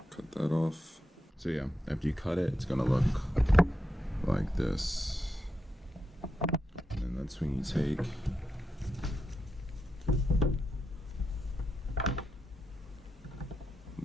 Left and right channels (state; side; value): normal; both; correlation 0.86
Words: Cut that off. So yeah, after you cut it, it's gonna look like this. And then that's when you take